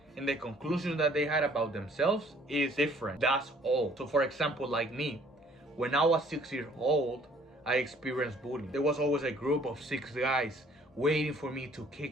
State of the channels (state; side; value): normal; both; correlation 0.58